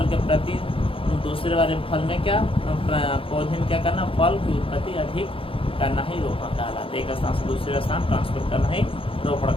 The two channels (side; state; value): right; late; 0.26 ms